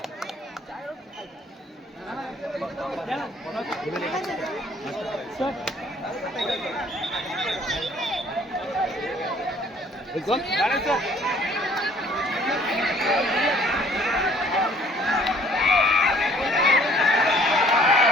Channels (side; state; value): both; normal; correlation 0.57